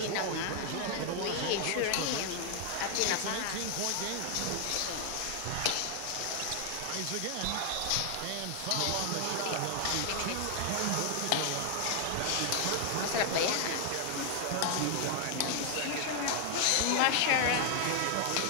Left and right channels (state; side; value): different; both; correlation 0.00